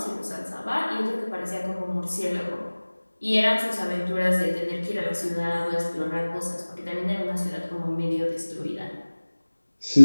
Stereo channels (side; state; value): both; inverted; correlation -1.00